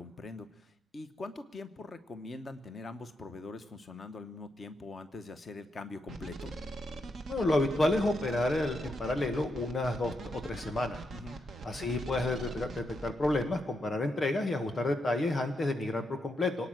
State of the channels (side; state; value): both; normal; correlation 0.82